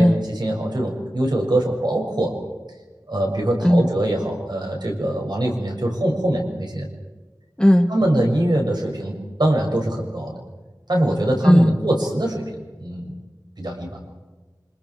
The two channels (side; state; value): both; normal; correlation 0.94